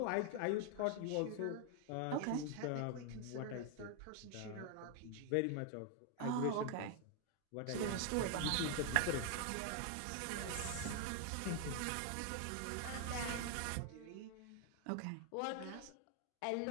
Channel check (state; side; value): different; both; correlation 0.00